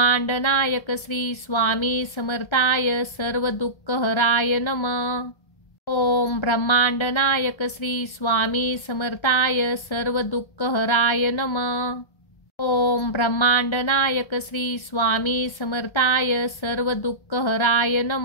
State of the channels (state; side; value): late; right; 1.3 ms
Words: नायक श्री स्वामी समर्थाय सर्व दुःखहराय नमः। ओम ब्रह्मांड नायक श्री स्वामी समर्थाय सर्व दुःखहराय नमः। ओम ब्रह्मांड नायक श्री स्वामी समर्थाय सर्व दुःखहराय